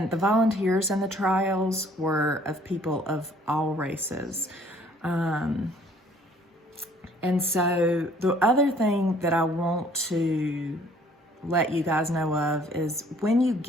the volunteers in the trials were of people of all races. And so the other thing that I want to let you guys know of is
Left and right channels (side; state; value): both; normal; correlation 0.58